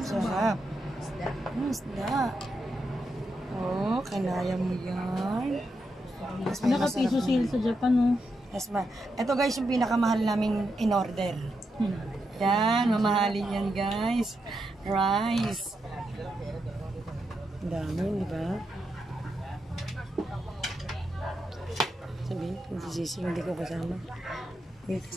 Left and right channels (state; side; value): normal; both; correlation 0.84